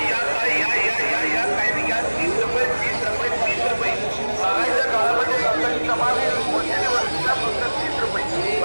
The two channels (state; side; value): inverted; both; correlation -1.00